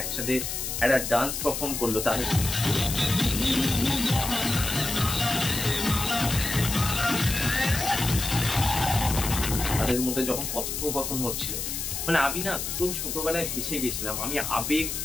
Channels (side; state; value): left; noise; hiss, 4 dB below the sound